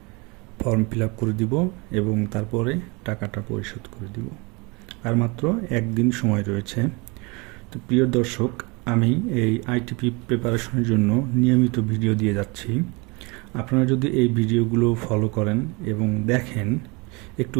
ফর্ম ফিল আপ করে দিব এবং তারপরে টাকাটা পরিশোধ করে দিব। আর মাত্র একদিন সময় রয়েছে। তো প্রিয় দর্শক, আমি এই আইটিপি প্রিপারেশনের জন্য নিয়মিত ভিডিও দিয়ে যাচ্ছি। আপনারা যদি এই ভিডিওগুলো ফলো করেন এবং দেখেন, একটু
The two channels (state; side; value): quieter; left; 27.7 dB